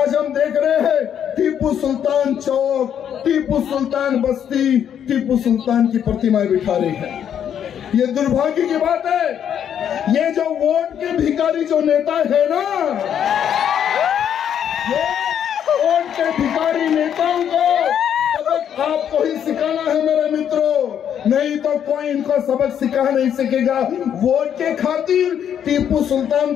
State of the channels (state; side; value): quieter; right; 9.1 dB